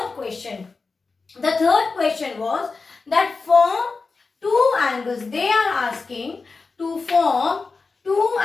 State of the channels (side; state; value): right; quieter; 4.3 dB